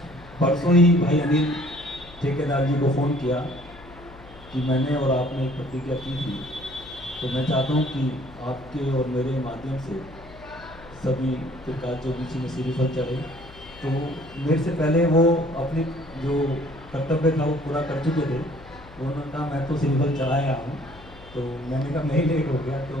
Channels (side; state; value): left; noise; hum, 21 dB below the sound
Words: परसों ही भाई अनिल ठेकेदार जी को फ़ोन किया कि मैंने और आपने एक प्रतिज्ञा की थी, तो मैं चाहता हूँ कि आपके और मेरे माध्यम से सभी त्रिकाल ज्योतिषी में श्रीफल चढ़े। तो मेरे से पहले वो अपने जो कर्तव्य था वो पूरा कर चुके थे। उन्होंने कहा मैं तो श्रीफल चढ़ाया हूँ, तो मैंने कहा मैं ही लेट हो गया, तो